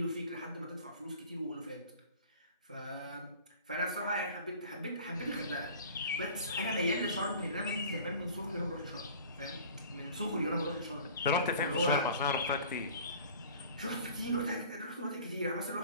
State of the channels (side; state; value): both; inverted; correlation -0.44